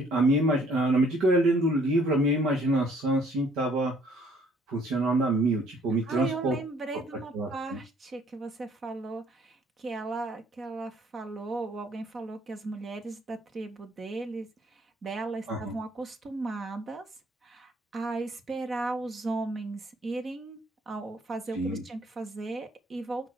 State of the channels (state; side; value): normal; both; correlation 0.61